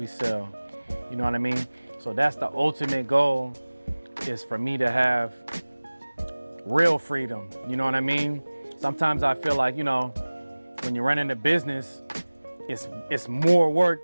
sell? You know what I mean? So that's the ultimate goal, is for me to have real freedom. You know what I mean? Sometimes I feel like, when you're running a business, it's more work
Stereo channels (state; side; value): inverted; both; correlation -1.00